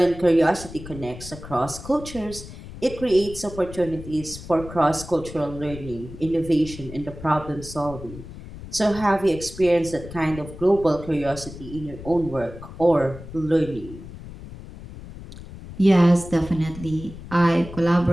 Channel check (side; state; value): left; noise; rumble, 14 dB below the sound